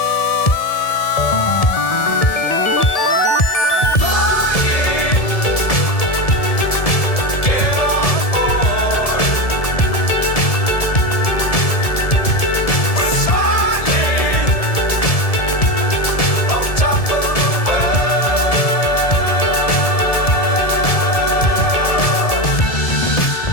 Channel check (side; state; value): right; late; 1.7 ms